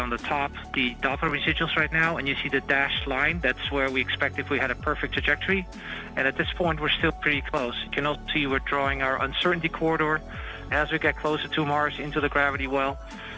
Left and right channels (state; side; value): identical; both; correlation 1.00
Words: the top the Doppler residuals right now, and you see the dashed line. That's where we expect if we had a perfect trajectory. And at this point, we're still pretty close. You can also see we're drawing our uncertainty corridor. As we get closer to Mars into the gravity well,